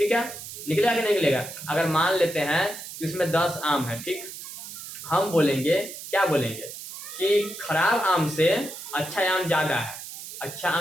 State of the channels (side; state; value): right; noise; hiss, 11 dB below the sound